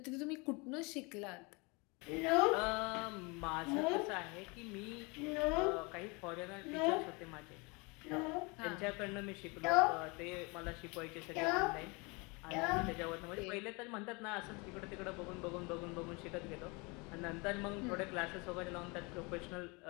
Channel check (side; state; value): right; quieter; 28.6 dB